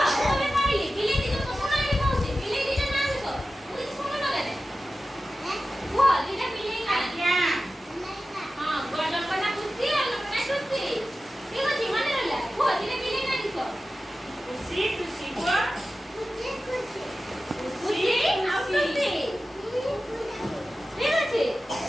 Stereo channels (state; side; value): normal; both; correlation 0.94